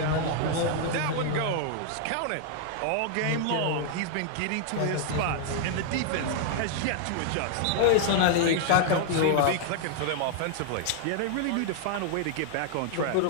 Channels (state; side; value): different; both; correlation -0.01